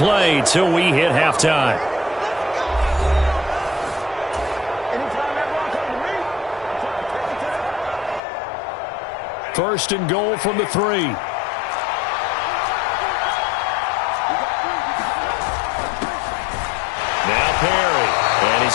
till we hit halftime. First and goal from the 3. Now Perry. And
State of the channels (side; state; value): right; drops out; at 8.2 s